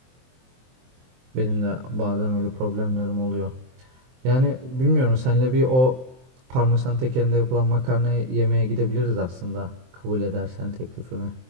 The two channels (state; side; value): late; left; 23 ms